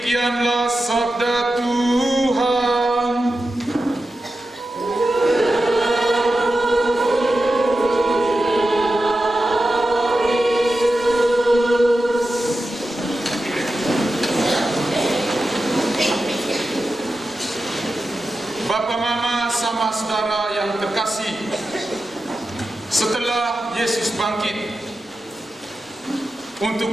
sabda Tuhan. Bapak, Mama, sama saudara yang terkasih, setelah Yesus bangkit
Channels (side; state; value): both; normal; correlation 0.91